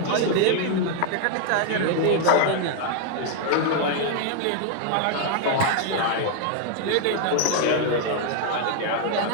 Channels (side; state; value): both; different; correlation 0.00